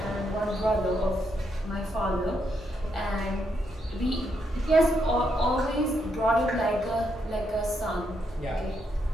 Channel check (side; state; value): both; normal; correlation 0.79